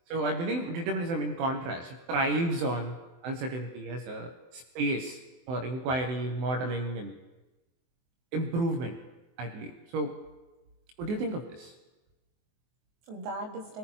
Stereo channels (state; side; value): late; left; 23 ms